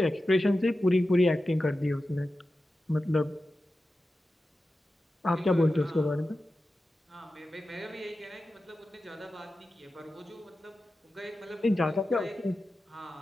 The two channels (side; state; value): both; normal; correlation 0.93